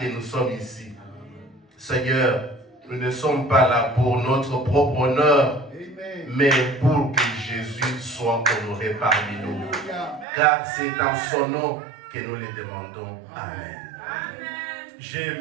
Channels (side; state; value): left; drops out; at 10.2 s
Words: nous sommes ici. Seigneur, nous ne sommes pas là pour notre propre honneur, mais pour que Jésus soit honoré parmi nous. Car c'est dans son nom que nous le demandons. Amen. J'ai